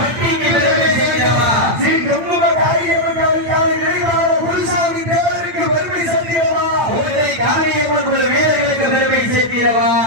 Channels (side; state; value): left; late; 8.8 ms